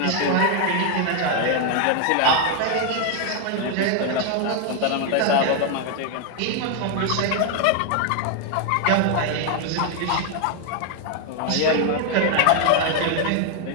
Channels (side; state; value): both; different; correlation 0.00